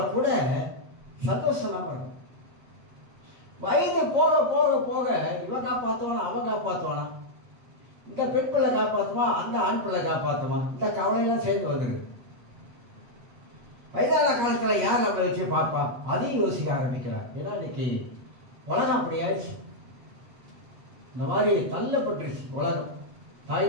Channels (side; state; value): left; late; 8.5 ms